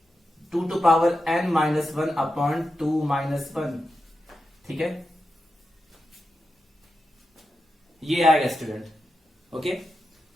2 to power n minus 1 upon 2 minus 1। ठीक है, ये आएगा स्टूडेंट। ओके,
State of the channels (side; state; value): both; normal; correlation 0.89